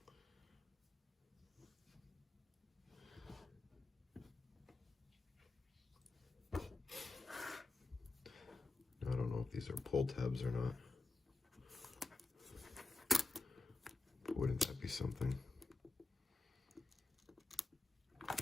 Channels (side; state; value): right; quieter; 3.6 dB